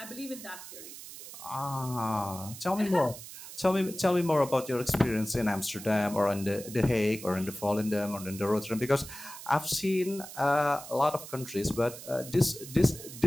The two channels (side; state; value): right; noise; hiss, 13 dB below the sound